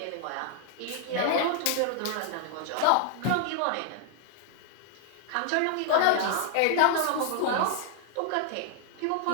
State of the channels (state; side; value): different; both; correlation 0.00